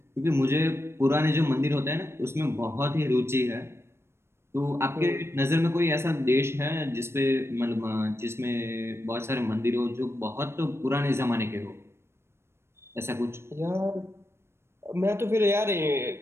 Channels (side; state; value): left; late; 0.12 ms